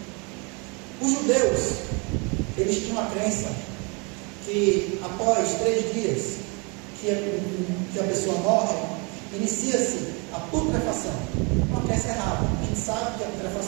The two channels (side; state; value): left; quieter; 31.6 dB